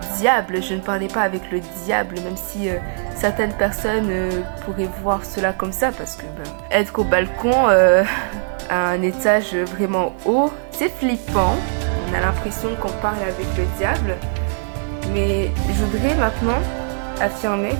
diable. Je ne parlais pas avec le diable, même si certaines personnes pourraient voir cela comme ça, parce que être au balcon à un étage vraiment haut, c'est flippant. On a l'impression qu'on parle avec le diable, mais je voudrais maintenant affirmer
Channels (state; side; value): silent; left; digital silence